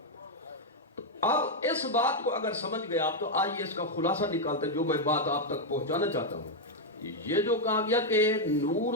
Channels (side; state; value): both; normal; correlation 0.00